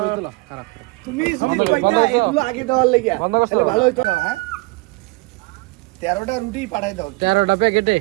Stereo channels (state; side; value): quieter; left; 25.2 dB